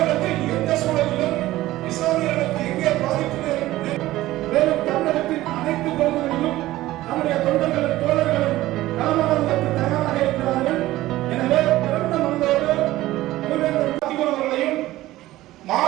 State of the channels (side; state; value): left; quieter; 16.3 dB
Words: எந்த சூழலிலும் இஸ்லாமியர்களுக்கு எங்கே பாதிப்பு மேலும் தமிழகத்தின் அனைத்து பகுதிகளிலும் நம்முடைய தொண்டர்களும் தோழர்களும் களமாடுவதற்கு தயாராக இருக்கிறார்கள். எனவே பிறந்த மனதோடு அவர்களையும்